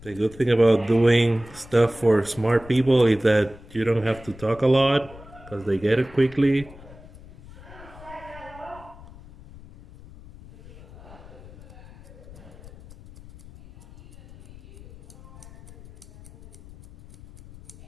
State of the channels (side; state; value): left; noise; rumble, 19 dB below the sound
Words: the good thing about doing stuff for smart people is that you don't have to talk a lot because they get it quickly.